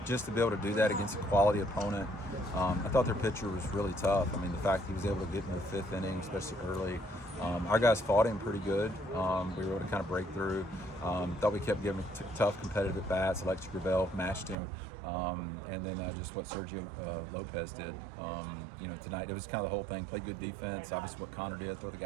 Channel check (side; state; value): left; drops out; at 14.6 s